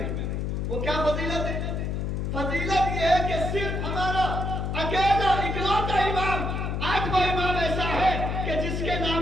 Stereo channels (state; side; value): noise; left; hum, 1 dB below the sound